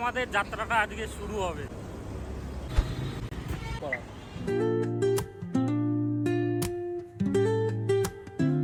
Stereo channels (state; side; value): identical; both; correlation 1.00